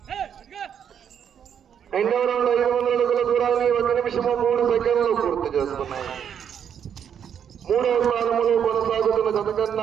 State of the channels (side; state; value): left; quieter; 8.3 dB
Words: రెండవ రౌండ్ 500 అడుగుల దూరాన్ని 1 నిమిషము 3 సెకండ్లు పూర్తి చేసుకున్నాయి. మూడవ స్థానంలో కొనసాగుతున్న జత